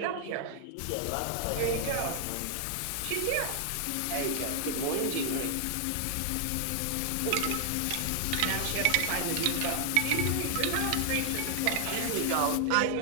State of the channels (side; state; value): both; different; correlation 0.00